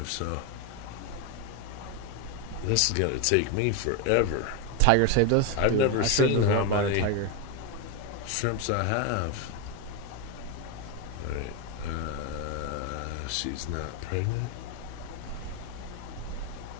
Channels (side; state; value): both; different; correlation 0.02